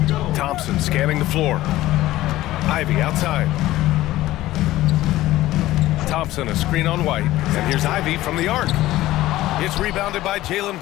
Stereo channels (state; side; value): quieter; right; 15.9 dB